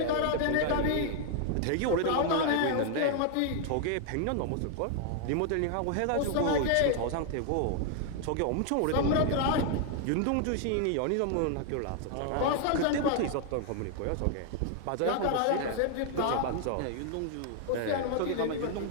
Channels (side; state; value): both; different; correlation 0.00